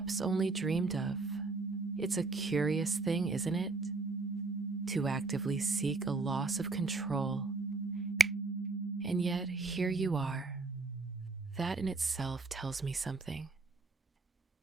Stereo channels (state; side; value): quieter; left; 3.9 dB